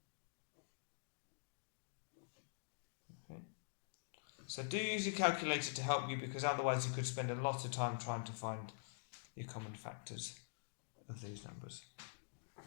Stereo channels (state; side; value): silent; right; digital silence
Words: Okay. So do use your calculator to help you, because otherwise you could spend a lot of time trying to find your common factors of these numbers.